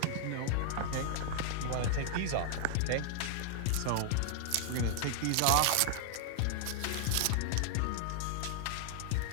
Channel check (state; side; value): different; both; correlation -0.01